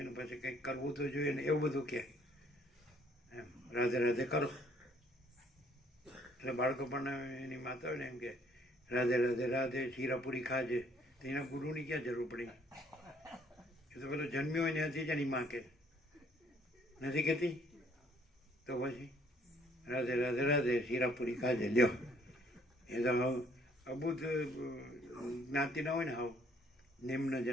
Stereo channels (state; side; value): normal; both; correlation 0.63